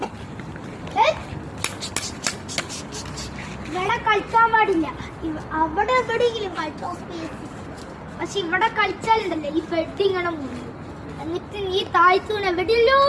ഇവിടെ കളിക്കാൻ പാടില്ല. അവിടെ എവിടെയെങ്കിലും കളിച്ചോ സ്പേസ്. പക്ഷെ ഇവിടെ കളിച്ചാലുണ്ടല്ലോ ഈ ബെഡ് ഇങ്ങനെ മുറിയും. എന്നിട്ട് ഈ താഴ്ത്തൂണ് എവിടെയല്ലോ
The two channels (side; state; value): both; identical; correlation 1.00